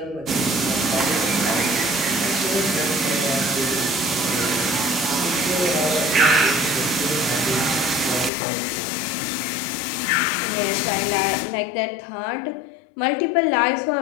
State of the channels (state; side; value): drops out; right; at 8.3 s